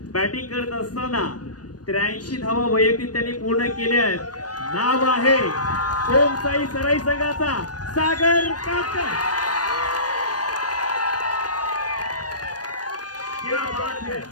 बॅटिंग करत असताना 83 धावा वैयक्तिक त्यांनी पूर्ण केल्या आहेत. नाव आहे ओम साई सराई संघाचा सागर काटकर.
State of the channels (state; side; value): late; right; 0.69 ms